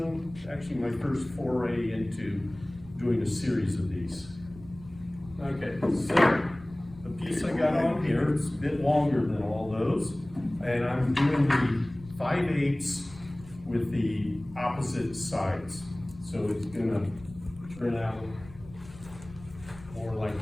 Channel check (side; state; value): left; noise; rumble, 19 dB below the sound